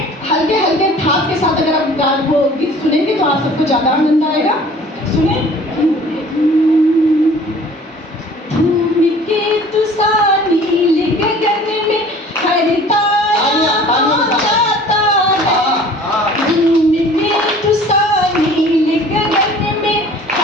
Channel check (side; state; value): both; normal; correlation 0.48